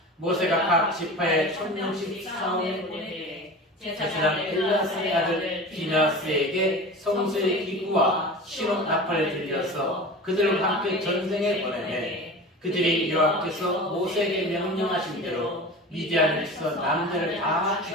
모세가 각 지파에 1000명씩 사원을 보내되 제사장 엘라사의 아들 비나스에게 성소의 기구와 신혼 나팔을 들려서 그들과 함께 전쟁에 보내매 그들이 여호와께서 모세에게 명령하신 대로 미디안을 치서 남자를 다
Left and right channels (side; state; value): both; normal; correlation 0.34